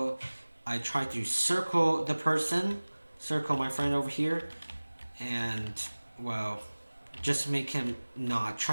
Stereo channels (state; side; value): inverted; both; correlation -1.00